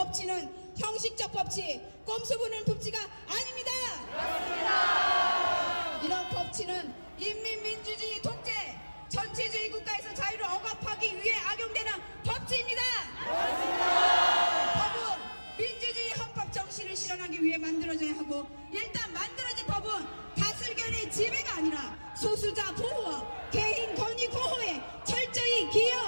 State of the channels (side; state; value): both; inverted; correlation -1.00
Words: 형식적 법치, 꼼수 부는 법치가 아닙니다. 이런 법치는 인민민주주의 독재, 전체주의 국가에서 자유를 억압하기 위해 악용되는 법치입니다. 법은 민주주의 헌법 정신을 실현하기 위해 만들어져야 하고 일단 만들어진 법은 다수결의 지배가 아니라 소수자 보호와 개인 권익 보호에 철저히